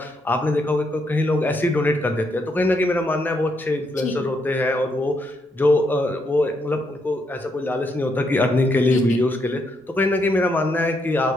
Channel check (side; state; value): both; normal; correlation 0.77